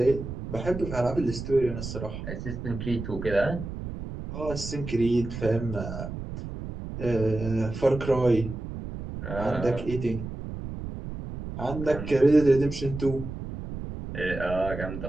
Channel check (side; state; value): right; noise; rumble, 8 dB below the sound